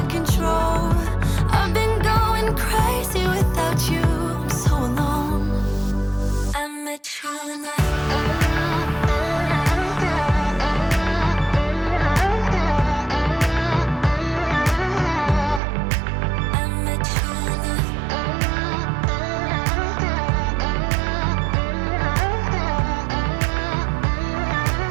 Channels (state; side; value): drops out; left; at 15.6 s